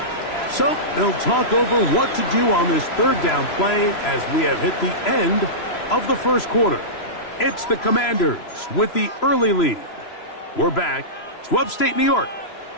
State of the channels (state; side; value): late; right; 3.0 ms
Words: So they'll talk over what to do on this 3rd down play as we have hit the end of the first quarter. It's the Commanders with the early lead. We're back to upstate New York